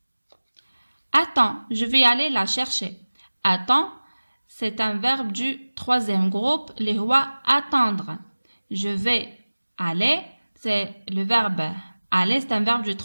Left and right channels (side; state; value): both; inverted; correlation -1.00